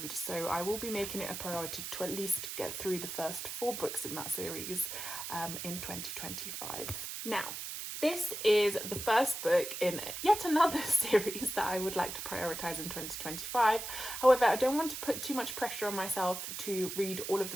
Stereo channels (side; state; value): right; noise; hiss, 6 dB below the sound